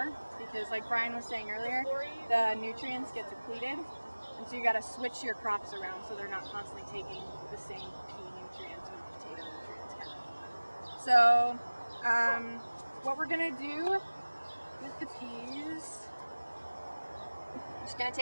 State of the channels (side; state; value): both; inverted; correlation -1.00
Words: because like Brian was saying earlier, the nutrients get depleted, and so you got to switch your crops around so they're not constantly taking the same pea nutrients or potato nutrients kind of. So, what we're going to do with the peas, I'm just going to